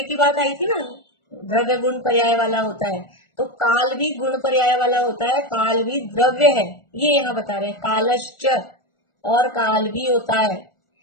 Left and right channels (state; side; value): late; right; 1.4 ms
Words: की बात आई थी ना, द्रव्य गुण पर्याय वाला होता है, तो काल भी गुण पर्याय वाला होता है, काल भी द्रव्य है, ये यहाँ बता रहे हैं। कालश्च, और काल भी होता है,